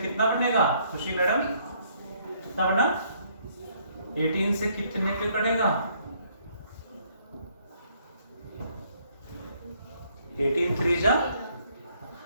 कितना बनेगा खुशी मैडम कितना बना 18 से कितने पे कटेगा 18 3 जा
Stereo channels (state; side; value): inverted; both; correlation -0.67